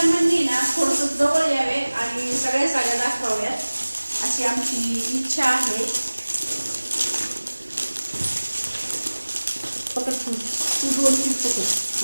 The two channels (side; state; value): both; inverted; correlation -1.00